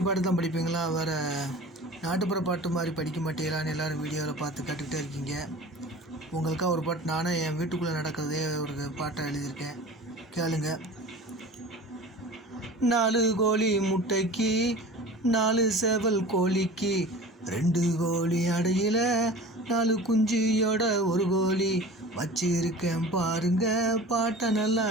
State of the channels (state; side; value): normal; both; correlation 0.39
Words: பாட்டு தான் படிப்பீங்களா? வேறு நாட்டுப்புற பாட்டு மாதிரி படிக்க மாட்டீங்களான்னு எல்லோரும் வீடியோவில் பார்த்து கற்றுக்கிட்டே இருக்கீங்க. உங்களுக்காக ஒரு பாட்டு நானே என் வீட்டுக்குள்ளே நடக்கிறதே ஒரு பாட்டை எழுதியிருக்கேன், கேளுங்க. 4 கோழி முட்டைக்கு 4 சேவல் கோழிக்கு 2 கோழி அடையில் 4 குஞ்சியோட ஒரு கோழி வச்சிருக்கேன் பாருங்க, பாட்டை நல்லா